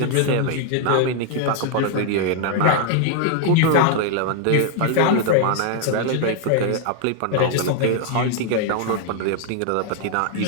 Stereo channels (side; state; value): both; different; correlation 0.00